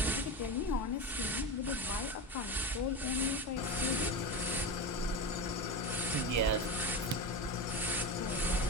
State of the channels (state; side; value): normal; both; correlation 0.21